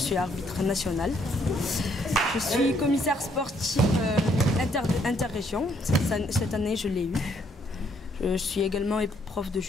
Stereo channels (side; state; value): both; normal; correlation 0.69